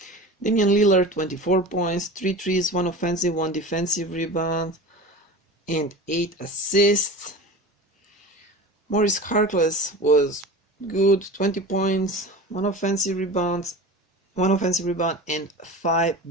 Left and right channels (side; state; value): both; normal; correlation 0.33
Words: Lillard, 24 points, 3 threes, 1 offensive, 1 defensive rebound, and 8 assists. Maurice Harkless was good, 20 points, 1 offensive rebound, and 5